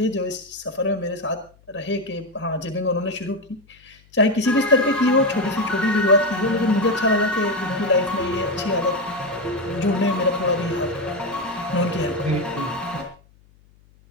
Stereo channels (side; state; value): left; noise; hum, 30 dB below the sound